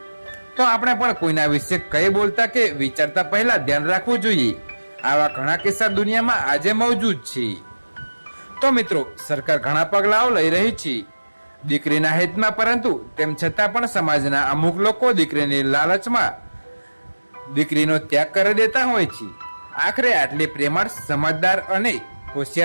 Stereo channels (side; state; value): both; inverted; correlation -1.00